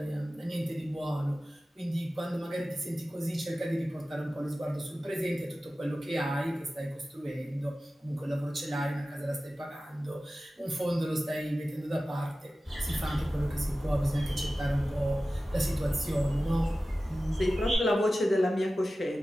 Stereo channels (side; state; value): both; normal; correlation 0.95